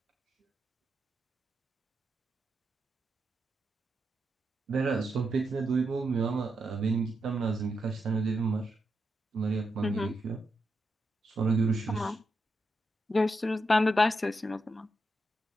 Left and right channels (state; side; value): normal; both; correlation 0.85